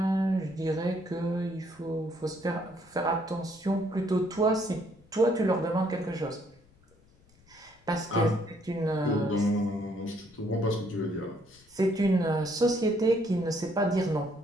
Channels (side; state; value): left; noise; rumble, 29 dB below the sound